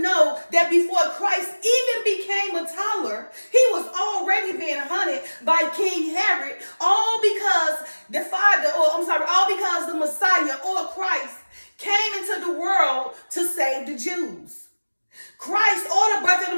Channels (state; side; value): inverted; both; correlation -1.00